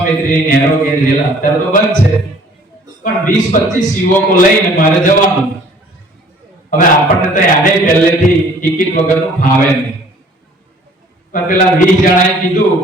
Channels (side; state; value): both; normal; correlation 0.54